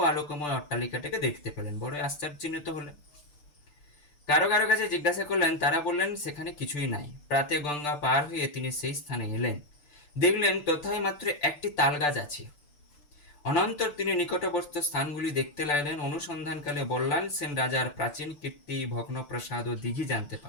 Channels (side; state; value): right; late; 6.8 ms